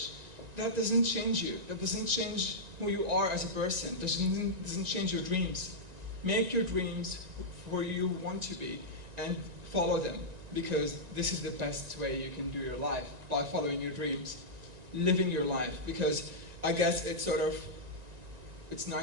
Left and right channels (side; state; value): left; late; 1.9 ms